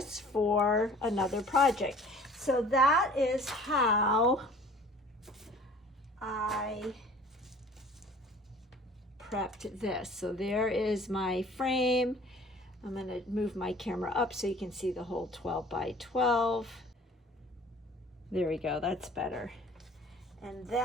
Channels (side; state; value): both; normal; correlation 0.49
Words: for another project. So that is how I prepped this. So there is my frame. I'm going to move my camera up so you can see the whole 12 by 12. There we go, that's better. And